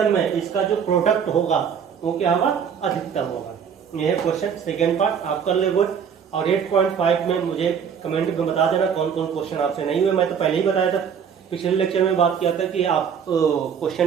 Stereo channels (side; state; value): left; quieter; 7.3 dB